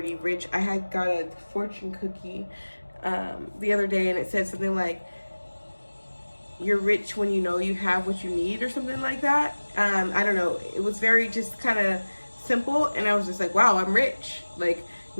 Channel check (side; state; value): both; inverted; correlation -1.00